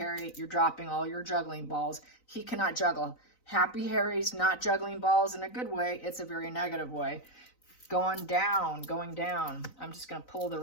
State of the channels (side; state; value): right; late; 3.9 ms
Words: you're dropping all your juggling balls. He cannot juggle. Happy Harry's not juggling balls in a good way. It's a very negative way. Going down, going down. I'm just going to pull the